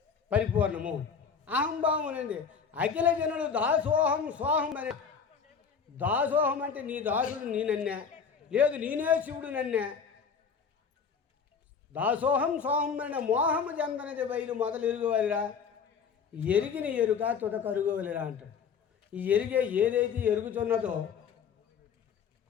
పరిపూర్ణము. అహంభావం అనేది అఖిల జనులు దాసోహం సోహం అనే. దాసోహం అంటే నీ దాసుడు నేనన్నే, లేదు నేనే శివుడు నన్నే. దాసోహం సోహం అనే మోహము చెందనది బయలు మొదలు ఎరుగువలిరా, ఎరిగిన ఎరుక తుద కరుగువలిరా అంటాడు. ఈ ఏదైతే ఎరుగుతున్నదో,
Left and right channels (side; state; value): right; quieter; 6.3 dB